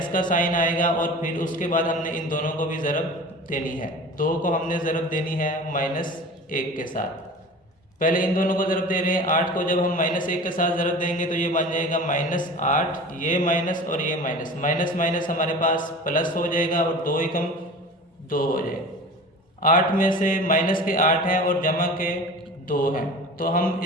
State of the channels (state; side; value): normal; both; correlation 0.37